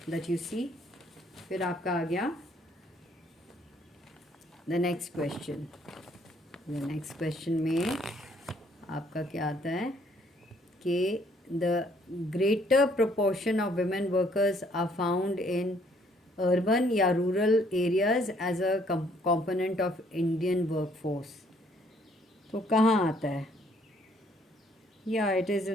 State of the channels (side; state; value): both; normal; correlation 0.64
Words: that you see. फिर आपका आ गया the next question. The next question में आपका क्या आता है कि the greater proportion of women workers are found in urban या rural areas as a component of Indian workforce. तो कहाँ आता है? या it is